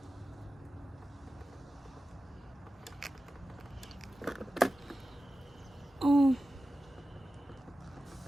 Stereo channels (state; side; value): normal; both; correlation 0.94